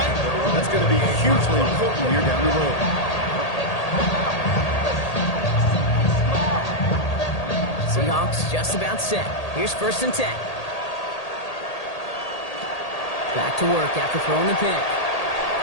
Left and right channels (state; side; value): late; right; 1.8 ms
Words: That's going to be hugely important here down the road. Seahawks just about set. Here's first and 10. Back to work after throwing the pick.